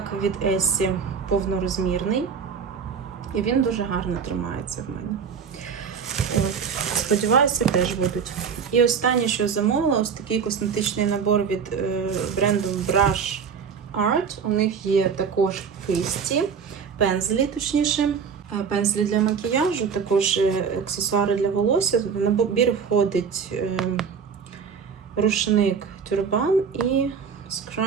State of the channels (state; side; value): quieter; left; 6.4 dB